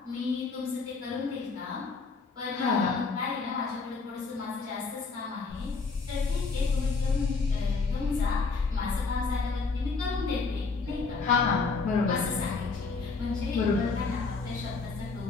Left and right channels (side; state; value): right; quieter; 4.4 dB